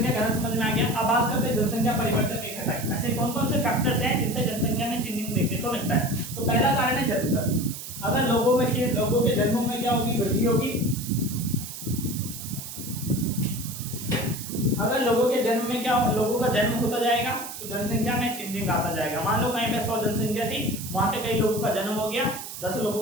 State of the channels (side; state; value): right; noise; hiss, 10 dB below the sound